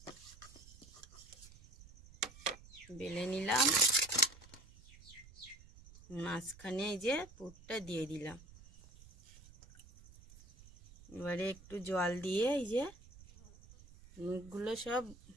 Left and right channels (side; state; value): right; noise; rumble, 21 dB below the sound